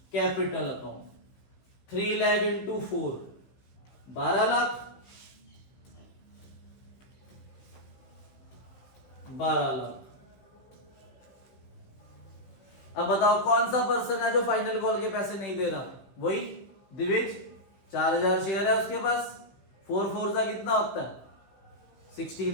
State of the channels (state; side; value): late; right; 15 ms